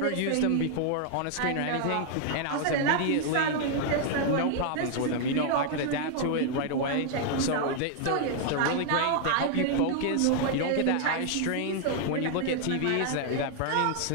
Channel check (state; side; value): different; both; correlation 0.00